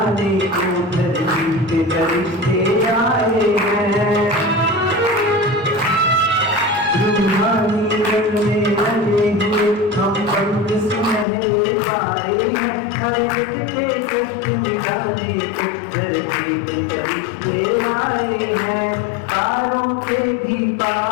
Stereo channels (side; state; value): right; drops out; at 11.2 s